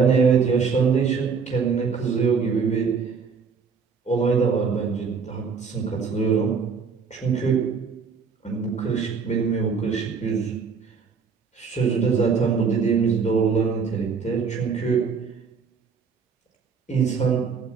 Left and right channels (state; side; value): quieter; left; 5.6 dB